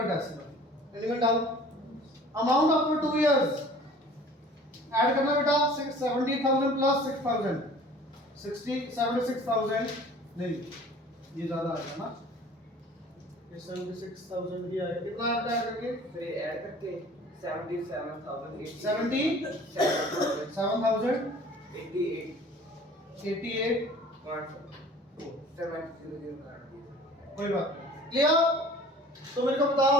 decimal element down amount after 2 years add करना बेटा 70,000 प्लस 6,000 76,000 नहीं ये ज्यादा आएगा ना ये 76,000 ही आएगा कितना आएगा ऐड करके फिर ऐड करके 77,088 7,000 88 कोई बात क्लियर तो मेरे को बताओ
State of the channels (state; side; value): normal; both; correlation 0.48